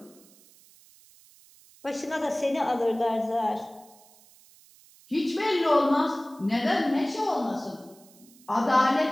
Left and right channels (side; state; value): right; noise; hiss, 26 dB below the sound